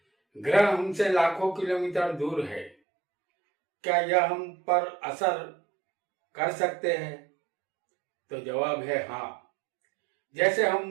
ग्रह हमसे लाखों किलोमीटर दूर है, क्या यह हम पर असर कर सकते हैं? तो जवाब है हाँ। जैसे हम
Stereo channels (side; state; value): left; drops out; at 2.8 s